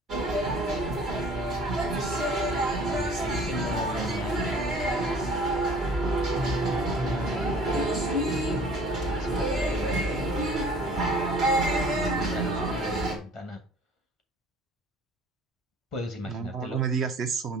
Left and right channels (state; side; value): normal; both; correlation 0.50